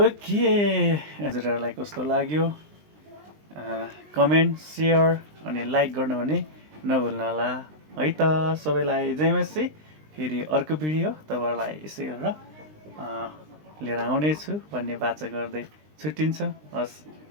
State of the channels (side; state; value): left; late; 20 ms